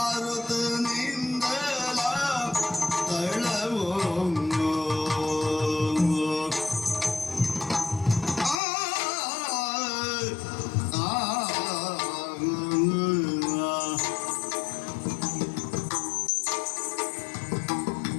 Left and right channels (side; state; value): right; drops out; at 8.6 s